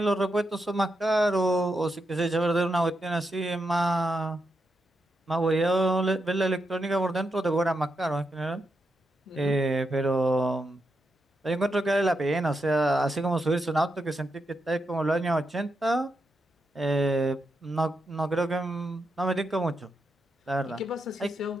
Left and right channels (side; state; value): both; normal; correlation 0.84